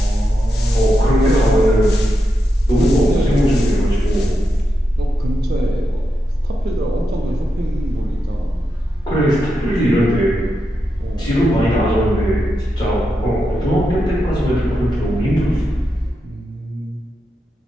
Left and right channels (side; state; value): both; normal; correlation 0.86